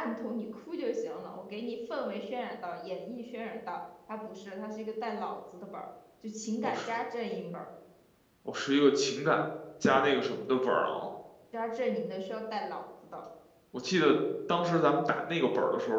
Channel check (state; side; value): identical; both; correlation 1.00